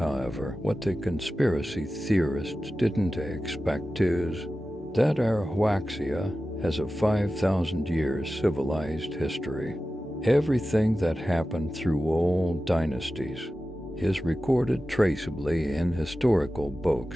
what the conspiracy theorists didn't expect is that our Huaxia has a 5,000-year civilized history. Everything that happened through all dynasties is recorded traceably in historical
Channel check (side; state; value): both; normal; correlation 0.94